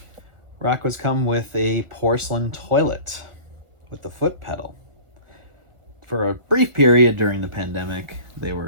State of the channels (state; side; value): late; left; 1.4 ms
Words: Rockwoods come with a porcelain toilet with the foot pedal. For a brief period during the pandemic, they